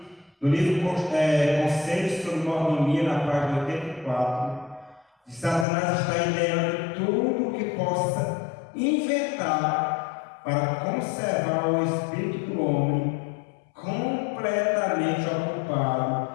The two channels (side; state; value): right; drops out; at 5.7 s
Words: no livro Conselhos sobre Mordomia, na página 84, de Satanás está ideando tudo o que possa inventar para conservar o espírito do homem completamente ocupado,